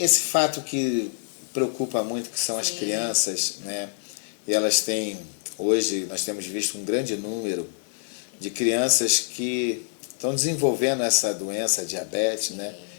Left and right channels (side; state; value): right; silent; digital silence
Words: fato que preocupa muito, que são as Sim. crianças, né? E elas têm, hoje nós temos visto um grande número de crianças que estão desenvolvendo essa doença, diabetes, né?